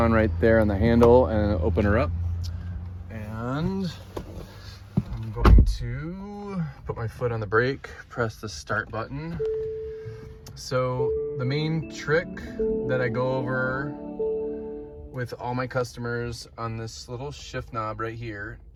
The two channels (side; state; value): both; identical; correlation 1.00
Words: right there on the handle and open her up. And I'm going to put my foot on the brake, press the start button. So the main trick that I go over with all my customers on this little shift knob right here,